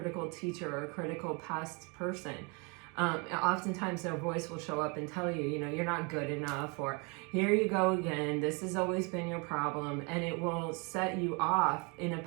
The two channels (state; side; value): quieter; left; 31.7 dB